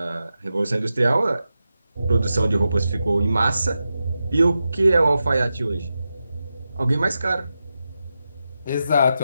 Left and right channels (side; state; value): both; inverted; correlation -0.90